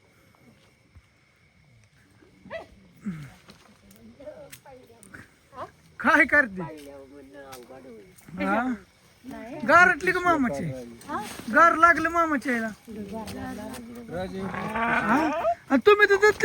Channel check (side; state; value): both; identical; correlation 1.00